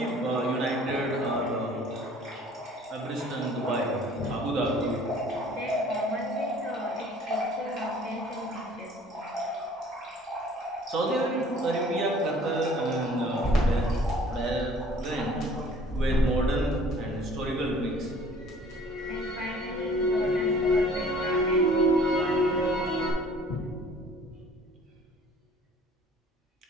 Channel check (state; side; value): normal; both; correlation 0.52